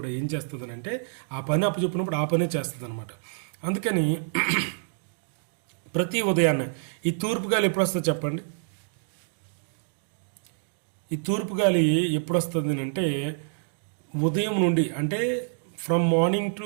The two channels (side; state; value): left; silent; digital silence